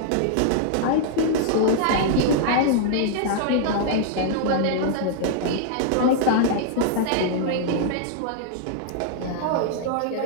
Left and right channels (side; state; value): both; different; correlation -0.01